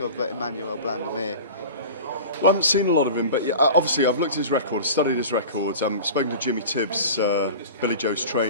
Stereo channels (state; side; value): inverted; both; correlation -0.35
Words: Emmanuel Blandemir? Well, I haven't seen a lot of him, but yeah, obviously I've looked at his record, studied his records. I've spoken to Jimmy Tibbs, Billy Joe's